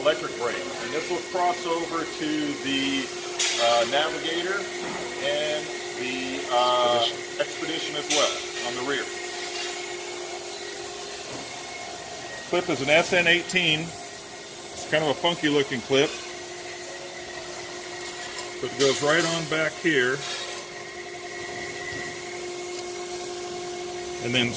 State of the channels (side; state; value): both; identical; correlation 1.00